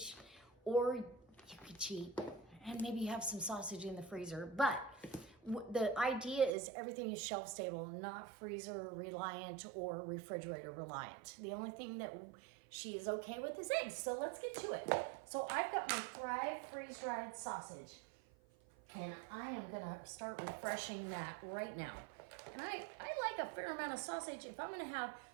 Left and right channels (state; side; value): drops out; left; at 6.5 s